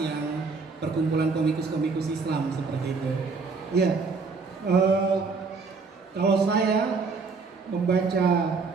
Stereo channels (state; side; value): quieter; left; 4.6 dB